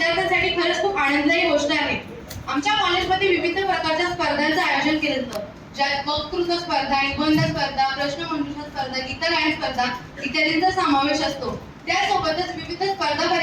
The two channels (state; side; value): identical; both; correlation 1.00